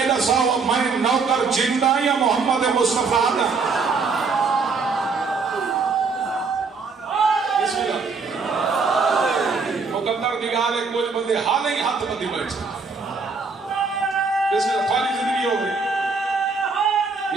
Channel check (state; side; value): quieter; left; 4.7 dB